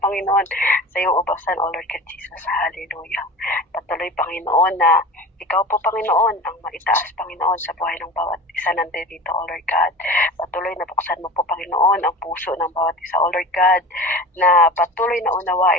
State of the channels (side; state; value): both; normal; correlation 0.35